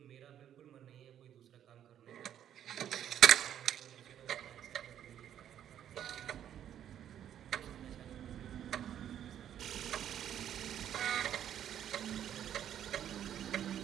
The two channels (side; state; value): left; quieter; 10.2 dB